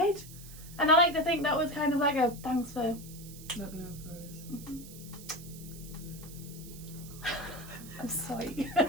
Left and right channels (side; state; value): right; noise; hiss, 16 dB below the sound